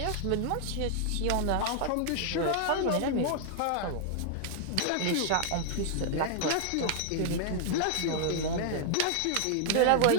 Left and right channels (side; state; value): both; different; correlation -0.01